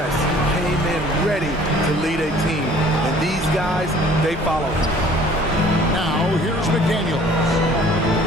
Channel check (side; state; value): both; normal; correlation 0.52